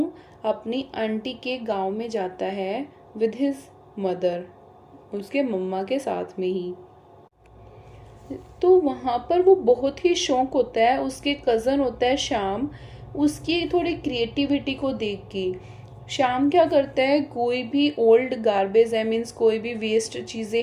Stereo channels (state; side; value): identical; both; correlation 1.00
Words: अपनी आंटी के गांव में जाता है विद हिज मदर, उसके मम्मा के साथ में ही। तो वहाँ पर वो बहुत ही शौक होता है, उसके कज़न होता है श्याम, उसकी थोड़ी क्रिएटिविटी को देख के। श्याम क्या करता है, कोई भी ओल्ड गार्बेज है, मीन्स कोई भी वेस्ट चीज़ें